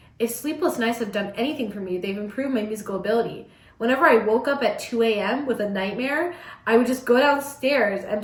If sleepless nights have done anything for me, they've improved my musical ability. Whenever I woke up at 2 a.m. with a nightmare, I would just go downstairs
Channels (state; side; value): identical; both; correlation 1.00